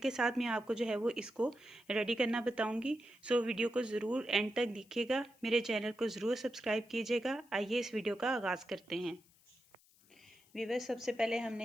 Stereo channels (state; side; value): noise; left; hiss, 30 dB below the sound